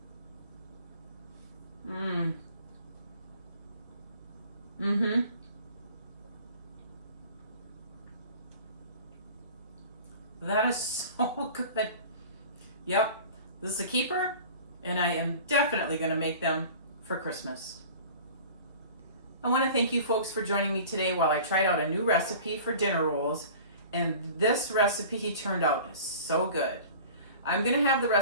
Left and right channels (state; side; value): inverted; both; correlation -0.42